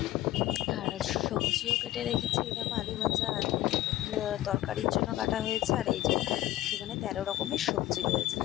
আর সবজিও কেটে রেখেছি। এই দেখো, আলু ভাজা, আলু তরকারির জন্য কাটা হয়েছে। আর এই যে সেখানে 13 রকমের সবজি রয়েছে,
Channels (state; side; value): quieter; right; 15.2 dB